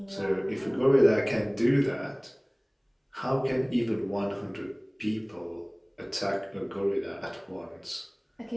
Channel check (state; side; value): identical; both; correlation 1.00